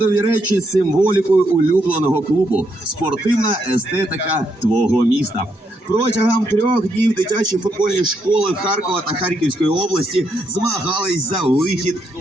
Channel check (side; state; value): both; normal; correlation 0.78